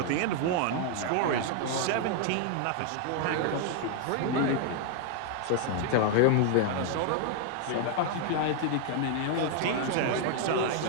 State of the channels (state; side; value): different; both; correlation 0.00